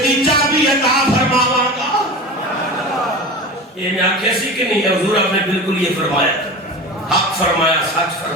دی چابی عطا فرماواں گا۔ یہ میں آنکھ ایسی کہ نہیں ہے، حضور آپ نے بالکل یہ فرمایا تھا، حق فرمایا، سچ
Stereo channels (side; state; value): both; normal; correlation 0.31